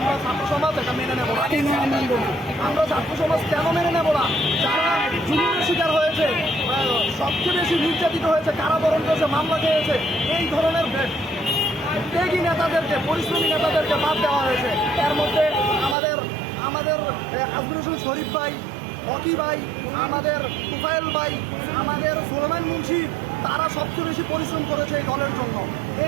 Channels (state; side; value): drops out; left; at 16.0 s